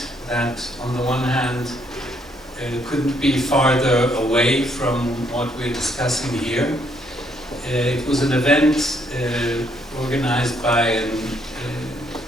that on the one hand couldn't be farther away from what we're discussing here. It was an event organized by an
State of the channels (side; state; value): both; normal; correlation 0.70